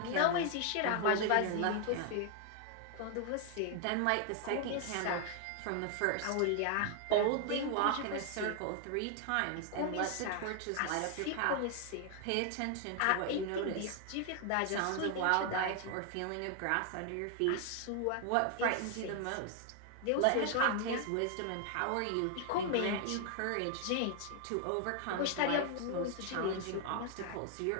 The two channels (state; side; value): different; both; correlation 0.00